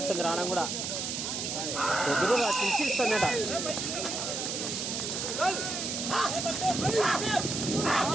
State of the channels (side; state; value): right; noise; hiss, 3 dB below the sound